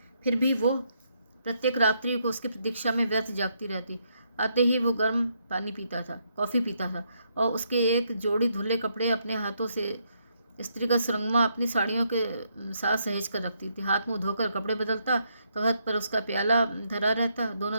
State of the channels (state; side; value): inverted; both; correlation -0.75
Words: फिर भी वो प्रत्येक रात्रि को उसकी प्रतीक्षा में व्यर्थ जागती रहती। आते ही वो गर्म पानी पीता था, कॉफ़ी पीता था और उसके एक जोड़ी धुले कपड़े अपने हाथों से स्त्रीगत सुरंगमा अपनी साड़ियों के साथ सहेज कर रखती थी। हाथ मुंह धोकर कपड़े बदलता तो हाथ पर उसका प्याला धरा रहता। दोनों